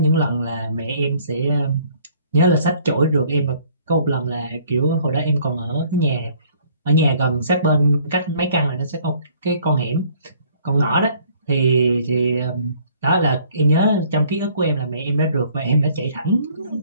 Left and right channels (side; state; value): both; inverted; correlation -0.59